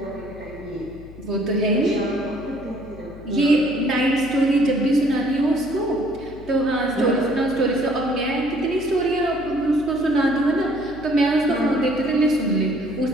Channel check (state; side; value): noise; left; hum, 18 dB below the sound